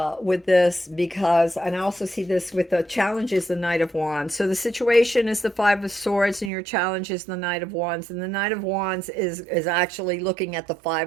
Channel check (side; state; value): left; drops out; at 6.5 s